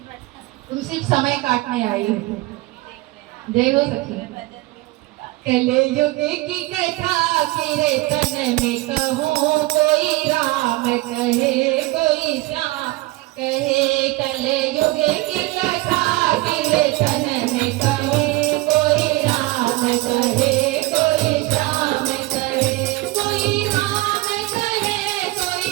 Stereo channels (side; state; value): left; quieter; 20.7 dB